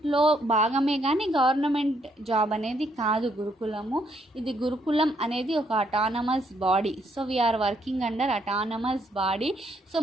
భాగమే, కానీ గవర్నమెంట్ జాబ్ అనేది కాదు గురుకులము. ఇది గురుకులం అనేది ఒక autonomous body. So we are working under autonomous body. So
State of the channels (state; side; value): normal; both; correlation 0.72